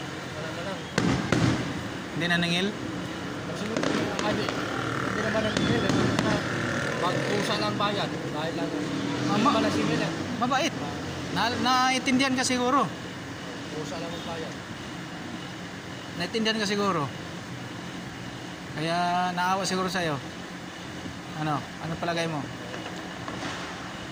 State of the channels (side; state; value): both; identical; correlation 1.00